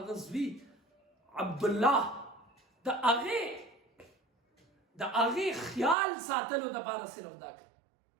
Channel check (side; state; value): left; drops out; at 6.0 s